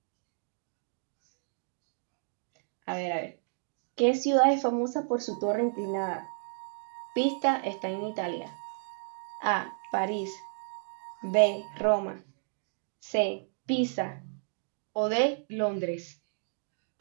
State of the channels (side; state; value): left; silent; digital silence